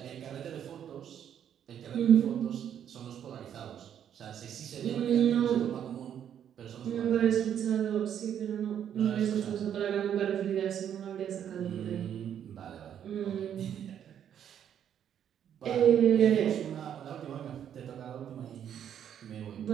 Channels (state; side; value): quieter; left; 9.4 dB